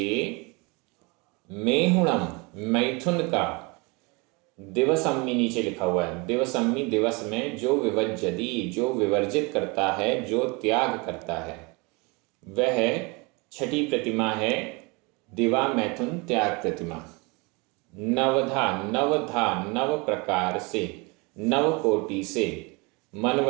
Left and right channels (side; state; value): left; quieter; 28.2 dB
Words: मेहुणम मैथुन का, दिवसम्मी नीचे लिखा हुआ है, दिवसम्मी दिवस में, जो विवज्जति जो विवर्जित करता है, जो त्याग करता है, वह 6ठी प्रतिमा है दिवा मैथुन त्याग प्रतिमा। नवधा, नवधा नव प्रकार से, नव कोटि से, मन